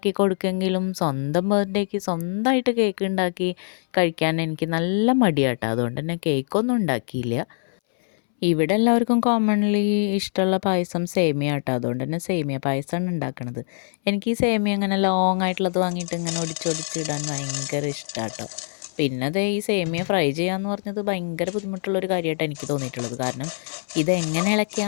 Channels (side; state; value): right; silent; 63 dB below the other